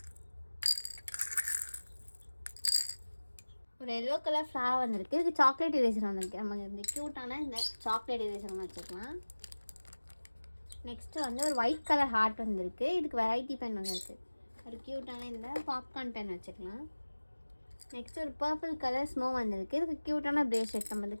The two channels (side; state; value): both; inverted; correlation -1.00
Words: ஒரு எல்லோ கலர் ஃப்ளவர் வந்திருக்கு. இதுக்கு சாக்லேட் எரேசர் வந்திருக்கு. நம்ம இந்த க்யூட்டான இந்த சாக்லேட் எரேசர் ஒன்று வச்சுக்கலாம். நெக்ஸ்ட்டு வந்து ஒரு ஒயிட் கலர் ஹார்ட் வந்திருக்கு. இதுக்கு வெரைட்டி பென் வந்திருக்கு. ஒரு க்யூட்டான இந்த பாப்கார்ன் பென் வச்சுக்கலாம். நெக்ஸ்ட் ஒரு பர்பிள் கலர் ஸ்னோ வந்திருக்கு. இதுக்கு க்யூட்டான பிரேஸ்லெட், நம்ம இந்த